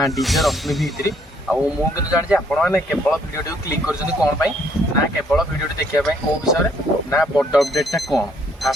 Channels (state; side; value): normal; both; correlation 0.67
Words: डीजे रश्मि भित्री मुझे जानी आपने केवल भिडियो क्लिक कर कौन ना केवल भिडियो देखापी कौ विषय ना बड़ अपडेटा कौन